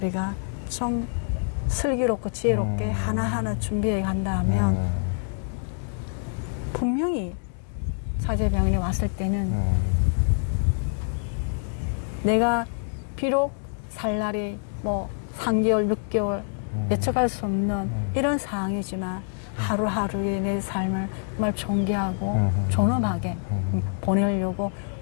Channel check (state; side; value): silent; right; digital silence